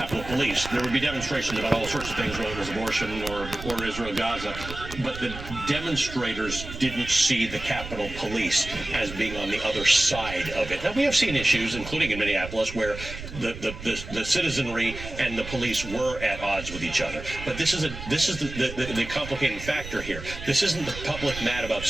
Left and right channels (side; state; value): right; noise; rumble, 11 dB below the sound